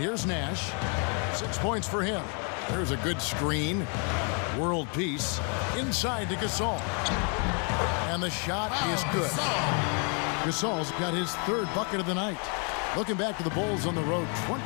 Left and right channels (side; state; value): right; quieter; 38.3 dB